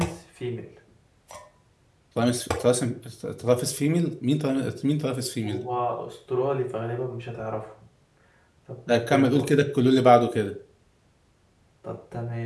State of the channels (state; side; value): identical; both; correlation 1.00